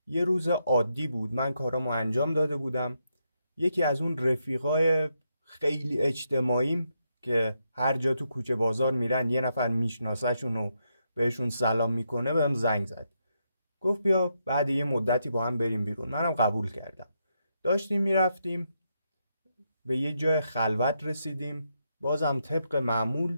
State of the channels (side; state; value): both; inverted; correlation -0.81